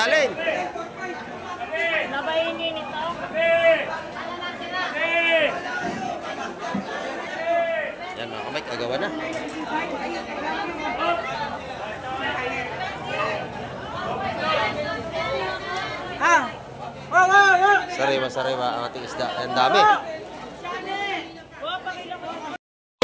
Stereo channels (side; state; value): both; identical; correlation 1.00